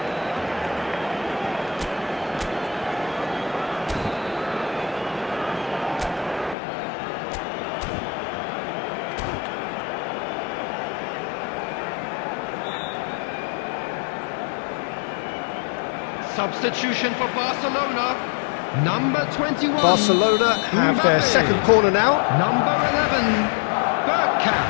Substitution for Barcelona. Number 21. Barcelona have their second corner now. Number 11.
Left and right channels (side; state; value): right; drops out; at 6.6 s